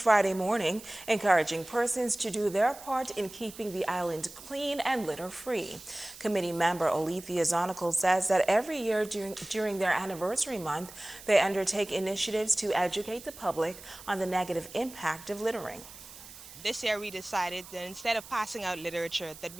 morning, encouraging persons to do their part in keeping the island clean and litter-free. Committee member Olethea Zonical says that every year during their anniversary month, they undertake initiatives to educate the public on the negative impact of littering. This year we decided that instead of passing out literature, that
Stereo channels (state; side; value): noise; right; hiss, 17 dB below the sound